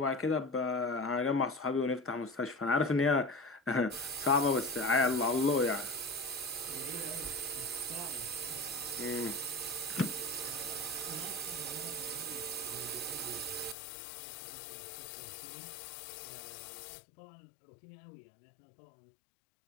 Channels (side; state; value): right; drops out; at 13.8 s